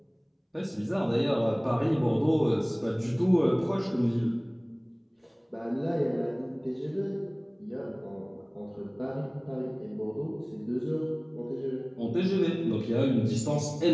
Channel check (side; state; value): both; identical; correlation 1.00